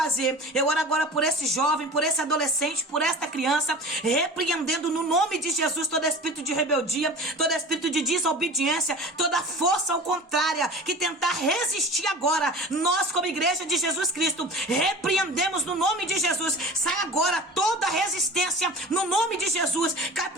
Eu oro agora por esse jovem, por esse adolescente, por esta criança, repreendendo no nome de Jesus todo espírito de rebeldia, todo espírito de desobediência, toda força ao contrária, que tentar resistir agora. Nós, como igreja de Jesus Cristo, repreendemos no nome de Jesus. Sai agora toda resistência no nome de Jesus. Cai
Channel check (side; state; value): both; normal; correlation 0.37